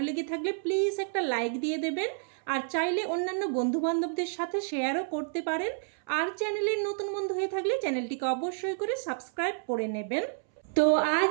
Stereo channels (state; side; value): silent; left; 58 dB below the other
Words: লেগে থাকলে প্লিজ একটা লাইক দিয়ে দেবেন। আর চাইলে অন্যান্য বন্ধুবান্ধবদের সাথে শেয়ারও করতে পারেন। আর চ্যানেলের নতুন বন্ধু হয়ে থাকলে চ্যানেলটিকে অবশ্যই করে সাবস্ক্রাইব করে নেবেন। তো